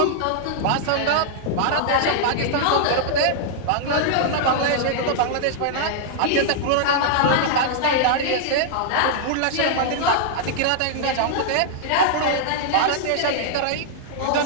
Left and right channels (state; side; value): different; both; correlation -0.01